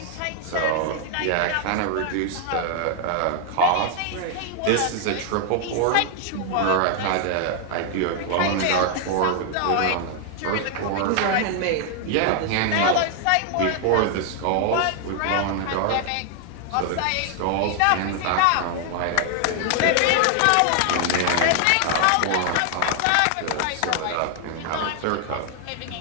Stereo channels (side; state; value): both; different; correlation 0.00